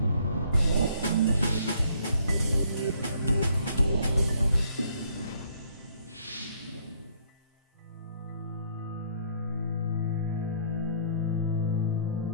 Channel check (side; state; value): both; inverted; correlation -0.64